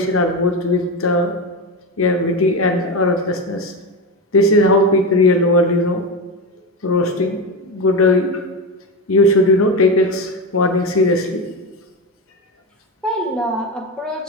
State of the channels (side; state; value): both; normal; correlation 0.17